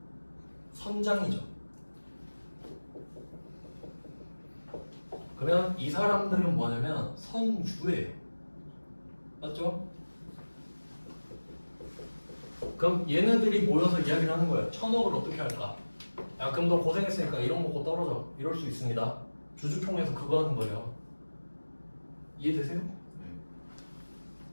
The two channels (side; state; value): both; inverted; correlation -1.00